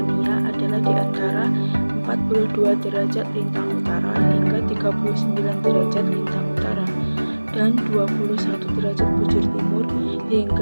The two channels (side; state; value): both; inverted; correlation -1.00